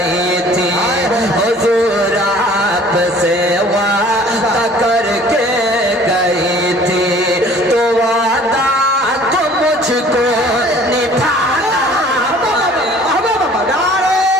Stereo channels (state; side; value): normal; both; correlation 0.51